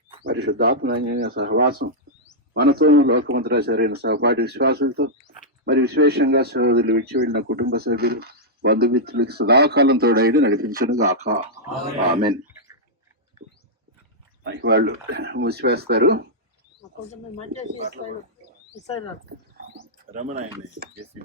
పరిశుద్ధాత్మ సహవాసం మనతో లోకమంతరా సరైన సహపాఠి విశ్వాసులతో మరి విశేషంగా సోదరులు విడిచి వెళ్ళిన కుటుంబ సభ్యులు, బంధుమిత్రులకి సదాకాలం తోడైడు నడిపించను గాక. ఆమెన్. వాళ్ళు మూసివేస్తారు.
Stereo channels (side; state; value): both; normal; correlation -0.08